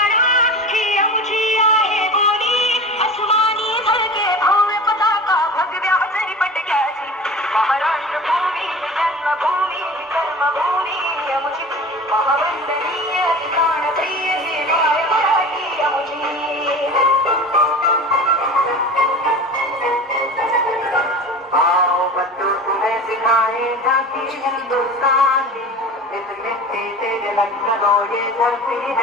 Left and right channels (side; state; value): both; normal; correlation 0.35